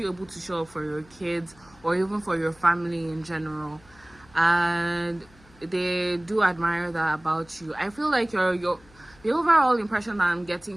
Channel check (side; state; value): left; noise; hum, 27 dB below the sound